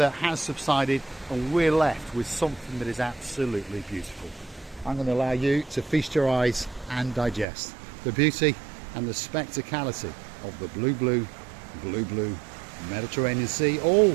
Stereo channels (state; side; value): drops out; left; at 7.5 s